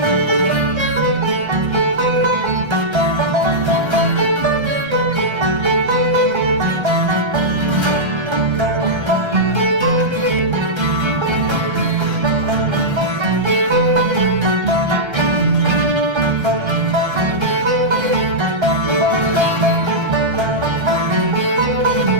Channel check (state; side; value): late; left; 1.3 ms